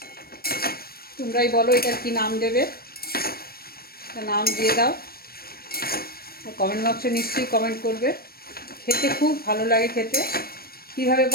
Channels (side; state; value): right; late; 0.44 ms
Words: তোমরাই বলো এটার কি নাম দেবে, নাম দিয়ে দাও। কমেন্ট বক্সে নিশ্চয়ই কমেন্ট করবে। খেতে খুব ভালো লাগে খেতে। কীভাবে